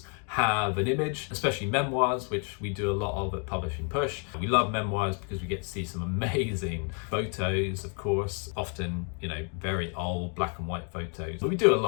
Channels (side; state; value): right; quieter; 39.8 dB